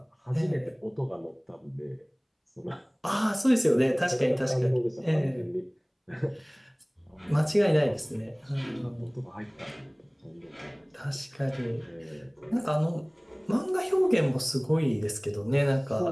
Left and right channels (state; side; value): identical; both; correlation 1.00